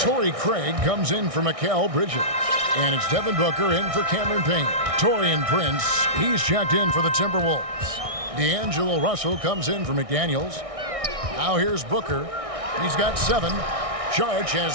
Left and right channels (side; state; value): left; late; 1.6 ms